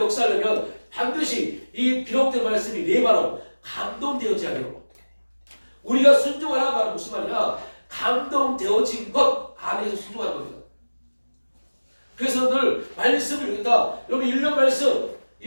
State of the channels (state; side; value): inverted; both; correlation -1.00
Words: 반드시 이 기록된 말씀이 내 바로 감동되어져야 돼요. 우리가 순종하라 말은 무슨 말이냐? 감동되어진 것 안에서 순종하는 겁니다. 그래서 늘 말씀을 읽는다. 여러분 1년